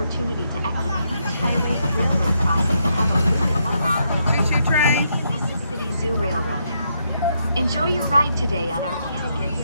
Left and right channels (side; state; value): both; inverted; correlation -0.78